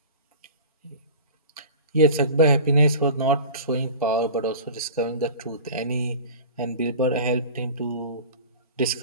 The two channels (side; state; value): both; inverted; correlation -0.37